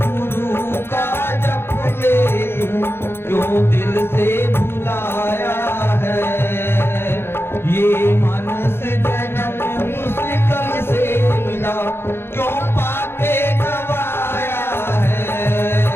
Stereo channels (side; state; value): right; late; 0.11 ms